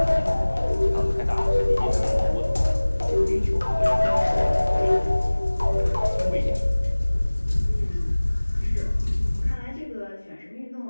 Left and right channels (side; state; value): both; inverted; correlation -1.00